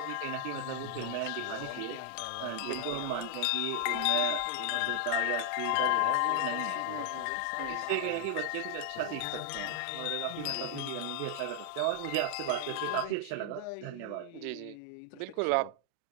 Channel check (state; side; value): different; both; correlation 0.00